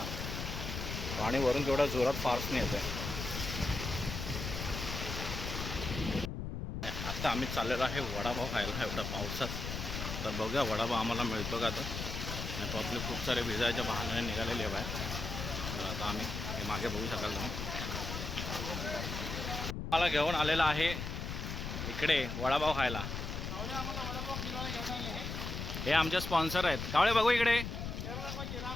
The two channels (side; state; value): left; noise; rumble, 5 dB below the sound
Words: पाणी वरून केवढ्या जोरात फार्सने येतं आहे. आता आम्ही चाललेलो आहे वडापाव खायला एवढ्या पावसात. तर बघूया वडापाव आम्हाला मिळतो का. तर आपले खूप सारे भिजायच्या बहाण्याने निघालेले आहे बाहेर. तर आता आम्ही हे मागे बघू शकाल तुम्ही. मला घेऊन आलेला आहे इकडे वडापाव खायला. हे आमचे स्पॉन्सर आहेत. कावळे बघू इकडे.